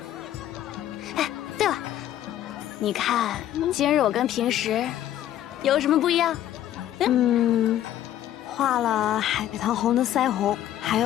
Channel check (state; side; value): quieter; right; 12.1 dB